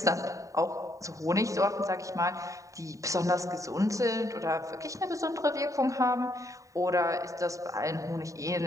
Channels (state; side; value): late; left; 0.16 ms